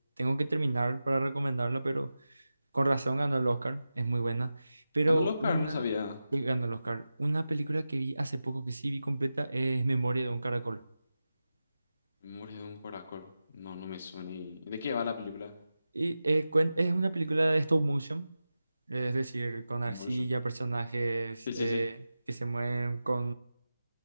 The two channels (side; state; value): both; inverted; correlation -0.93